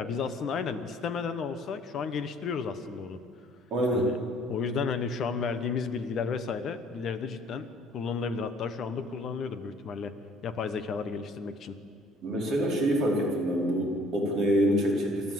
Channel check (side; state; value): both; normal; correlation 0.57